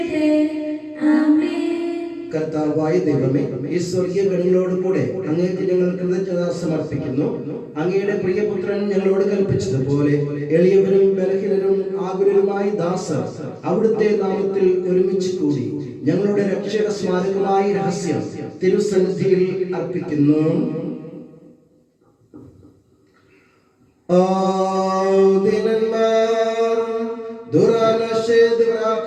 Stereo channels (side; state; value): both; identical; correlation 1.00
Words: ആമേൻ. കർത്താവായ ദൈവമേ, ഈ സ്വർഗീയ ഗണങ്ങളോട് കൂടെ അങ്ങേക്ക് ഞങ്ങൾ കൃതജ്ഞത സമർപ്പിക്കുന്നു. അങ്ങയുടെ പ്രിയപുത്രൻ ഞങ്ങളോട് കൽപ്പിച്ചതുപോലെ എളിയവരും ബലഹീനരും ആകുലരുമായ ദാസർ അവിടുത്തെ നാമത്തിൽ ഒരുമിച്ച് കൂടി ഞങ്ങളുടെ രക്ഷയുടെ സ്മാരകമായ രഹസ്യം തിരുസന്നിധിയിൽ അർപ്പിക്കുന്നു.